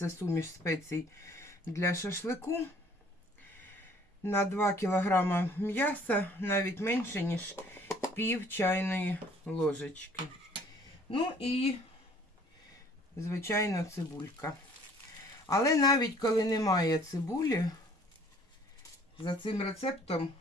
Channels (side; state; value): both; normal; correlation 0.56